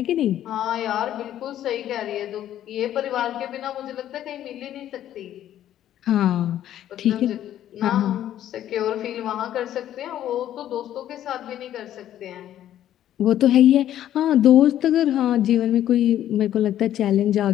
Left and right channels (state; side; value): quieter; right; 11.7 dB